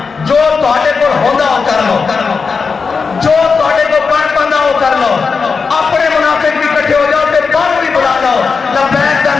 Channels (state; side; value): quieter; right; 5.1 dB